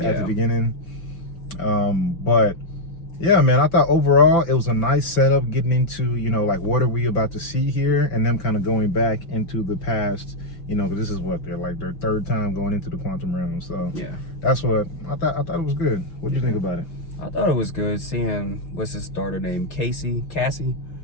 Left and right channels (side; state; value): right; late; 6.0 ms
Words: the beginning. But yeah, man, I thought overall it was a nice setup getting into, like what are we about to see here, and them kind of going back into the past, because this is what they're like their third time going into the quantum realm. So yeah, that's what I thought. I thought it was good. What do you think about it? I thought it was good seeing what's his daughter name, Cassie,